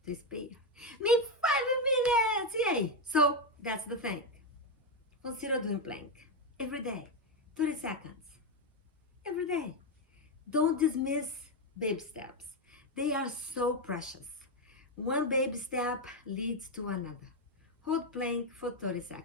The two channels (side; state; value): both; normal; correlation 0.07